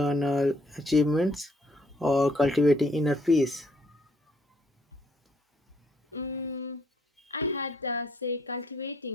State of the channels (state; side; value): normal; both; correlation 0.67